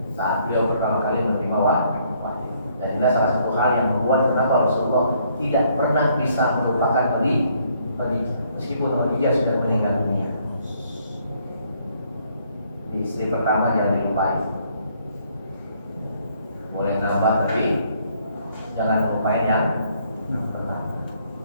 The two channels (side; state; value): both; inverted; correlation -0.67